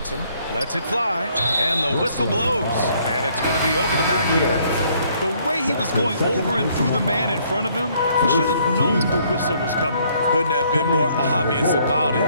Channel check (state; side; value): inverted; both; correlation -0.65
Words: Lets it fly. And the whistle blows. And it's going to be over the back here. The way he was going over and through the man in front of him, he should have known the whistle was coming. Couldn't have been more obvious about it.